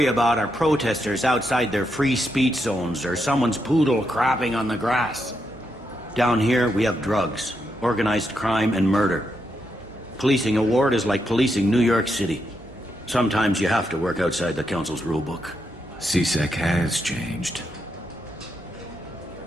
about are protesters outside their free speech zones or someone's poodle crapping on the grass. Down here, we have drugs, organized crime, and murder. Policing a ward is like policing New York City. Sometimes you have to work outside the Council's rulebook. CSEC has changed.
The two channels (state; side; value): noise; right; hum, 25 dB below the sound